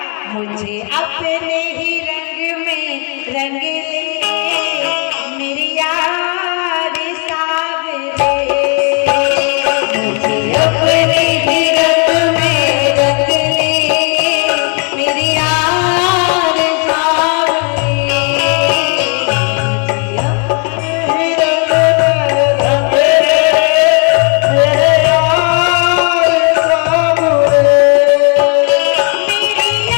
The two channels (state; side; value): quieter; right; 38.2 dB